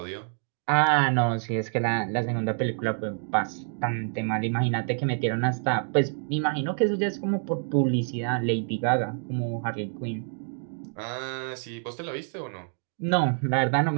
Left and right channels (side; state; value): left; silent; 60 dB below the other